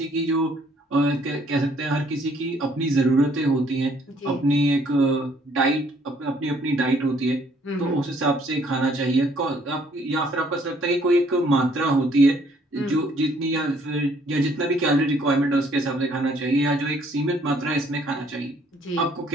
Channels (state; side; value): normal; both; correlation 0.63